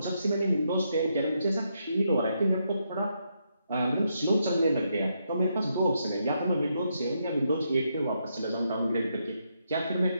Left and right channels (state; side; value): inverted; both; correlation -0.79